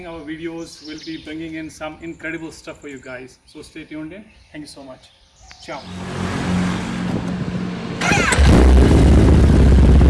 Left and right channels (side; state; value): both; identical; correlation 1.00